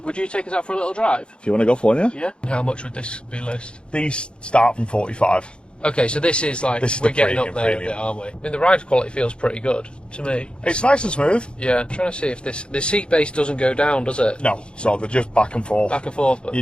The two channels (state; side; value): late; right; 0.054 ms